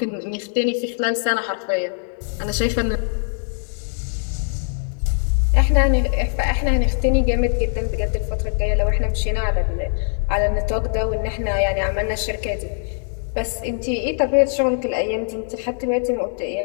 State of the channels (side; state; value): right; silent; digital silence